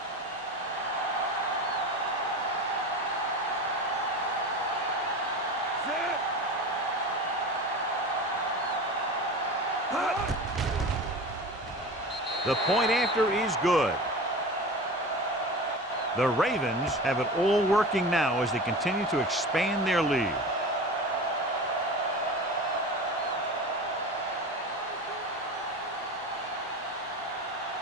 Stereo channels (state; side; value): normal; both; correlation 0.32